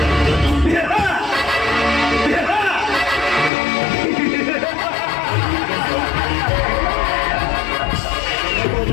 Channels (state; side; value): drops out; right; at 3.5 s